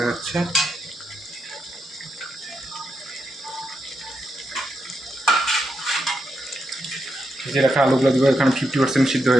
যাচ্ছে। ভেজে রাখা আলুগুলো দেবো, এখানে 50% সিদ্ধ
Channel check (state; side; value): normal; both; correlation 0.84